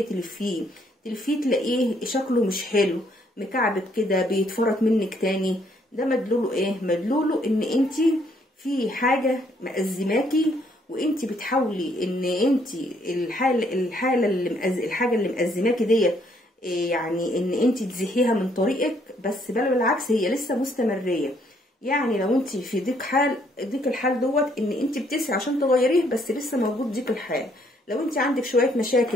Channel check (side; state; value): both; normal; correlation 0.68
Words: تلفيه تلاقيه شكله مش حلو، مكعبت كده، بيتفرط منك تاني. ده مدلوله ايه؟ مدلوله ان انت في حاجه مأزماكي، وانت بتحاولي ان انت الحاجه اللي مأزماكي ديت، يعني ان انت تزيحيها من طريقك، بس بل بالعكس هي لسه مستمريه. يعني لو انت في ضيق الحال دوت ان انت بتسعي عشان تغيريه، بس لسه موجود ضيق الحال. لو انت عندك شويه